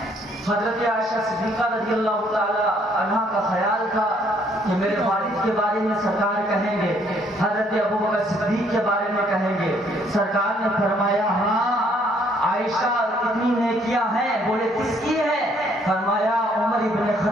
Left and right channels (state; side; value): normal; both; correlation 0.65